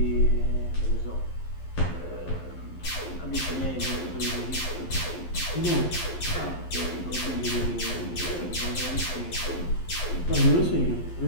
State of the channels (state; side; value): late; right; 11 ms